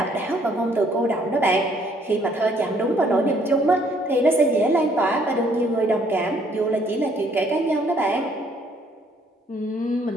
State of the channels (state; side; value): normal; both; correlation 0.64